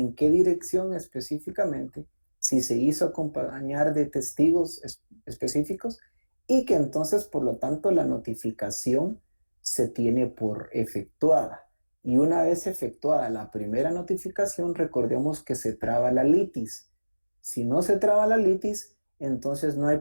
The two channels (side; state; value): both; inverted; correlation -1.00